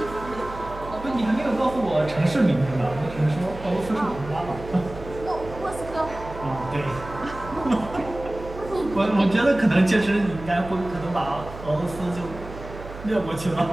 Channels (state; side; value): noise; right; hum, 13 dB below the sound